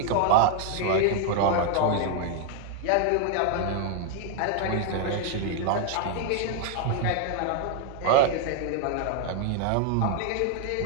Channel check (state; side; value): different; both; correlation 0.00